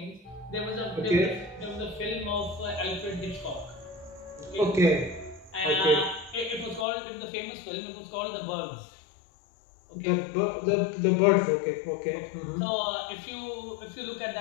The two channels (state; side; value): drops out; right; at 6.9 s